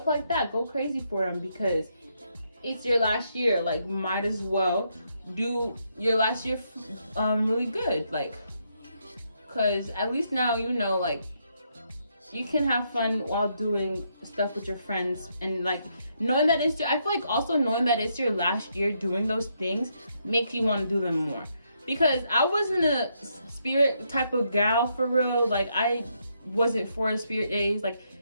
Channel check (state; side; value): inverted; both; correlation -0.77